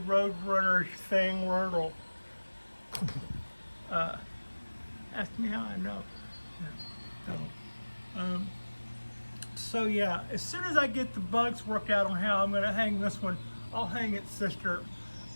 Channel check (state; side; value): inverted; both; correlation -1.00